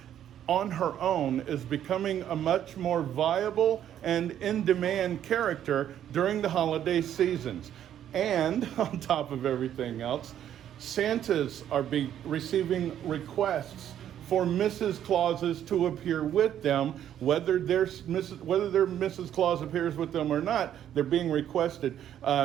on her own is becoming a much more viable and in-demand character during the holiday seasons. And on top of everything else, Santas are receiving requests for Mrs. Clauses to appear with them, whether their Mrs. Claus appears with them or not. They're being requested.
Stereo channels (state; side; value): quieter; left; 10.5 dB